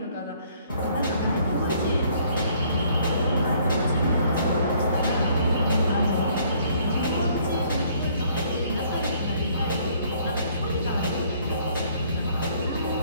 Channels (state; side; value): inverted; both; correlation -0.62